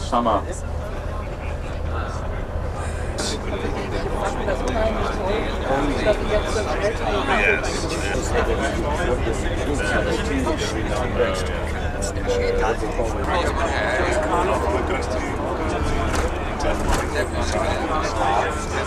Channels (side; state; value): both; identical; correlation 1.00